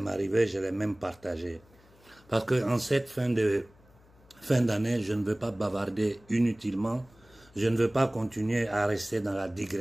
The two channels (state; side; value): noise; left; hum, 28 dB below the sound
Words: je l'ai même partagé. Parce que en cette fin d'année, je ne veux pas bavarder inutilement. Je ne veux pas continuer à rester dans la